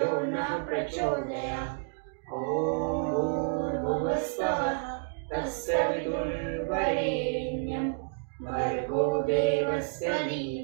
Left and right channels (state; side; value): silent; left; digital silence